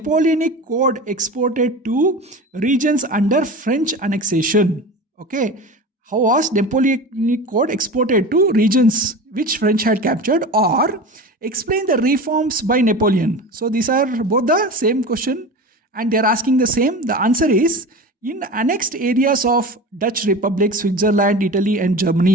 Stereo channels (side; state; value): both; normal; correlation 0.31